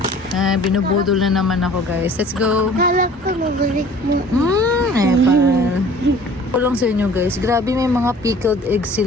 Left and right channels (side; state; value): both; normal; correlation 0.49